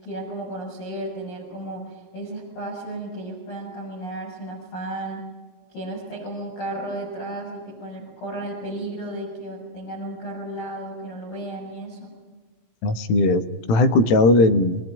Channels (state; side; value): late; right; 18 ms